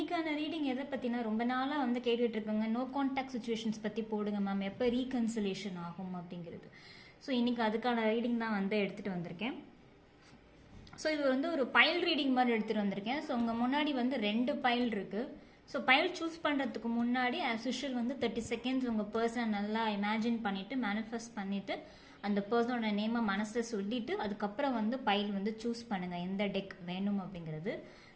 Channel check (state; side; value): identical; both; correlation 1.00